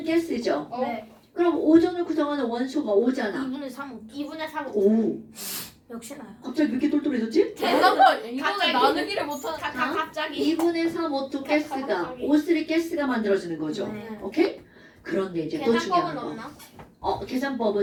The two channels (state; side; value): identical; both; correlation 1.00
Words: 가스죠. 네. 그럼 오존을 구성하는 원소가 오잖아. 2분의 3. 2분의 3. 오, 역시 나요. 갑자기 왜 이렇게 똘똘해졌지? 대단한 이거는 갑자기. 나누기를 못하는. 갑자기. 2분의 3 O2 가스가 O3 가스가 만들어지는 거죠. 네. 오케이? 그런데 이제 또 중요한 계산법은 거. 없나?